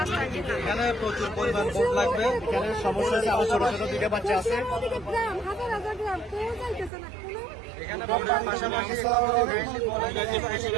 এখানে প্রচুর পরিমাণ বোট লাগবে। এখানে সমস্যা আছে, আমার ছোট ছোট 2টা বাচ্চা আছে।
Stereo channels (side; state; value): left; drops out; at 6.9 s